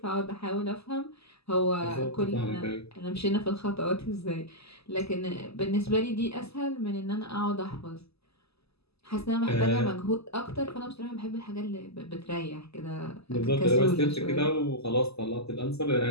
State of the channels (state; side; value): late; right; 0.78 ms